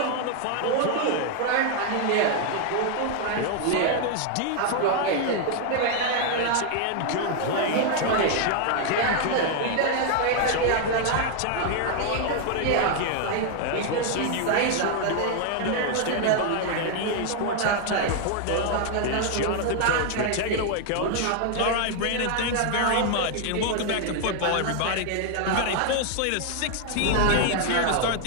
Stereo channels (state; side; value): different; both; correlation 0.00